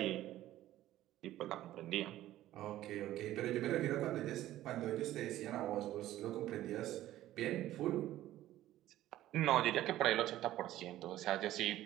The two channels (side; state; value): left; quieter; 14.2 dB